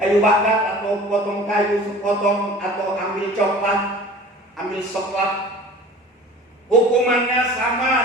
bakar atau potong kayu sepotong, atau ambil coklat, ambil soklat, hukumannya sama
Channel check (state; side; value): normal; both; correlation 0.43